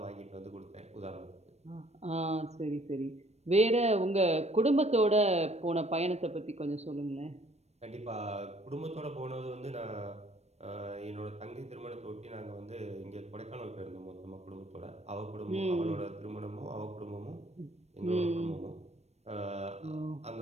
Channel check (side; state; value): left; late; 0.31 ms